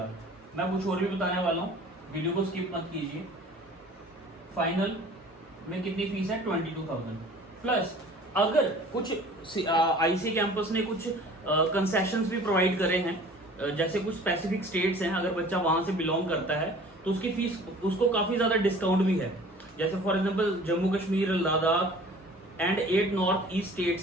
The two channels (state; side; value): normal; both; correlation 0.47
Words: मैं कुछ और भी बताने वाला हूँ, वीडियो को स्किप मत कीजिए। फाइनल में कितनी फीस है? 22,000 प्लस अगर कुछ आईसी कैंपस ने कुछ कंसेशंस भी प्रोवाइड करे हैं, जैसे कुछ स्पेसिफिक स्टेट्स हैं, अगर बच्चा वहां से बिलोंग करता है तो उसकी फीस, उसको काफी ज्यादा डिस्काउंट भी है। जैसे for example Jammu Kashmir, Ladakh and 8 north east